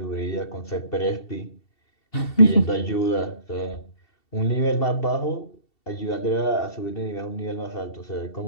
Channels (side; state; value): right; late; 2.7 ms